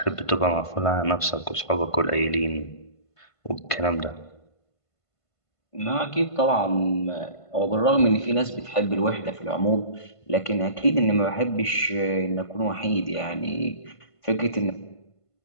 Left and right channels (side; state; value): right; late; 1.5 ms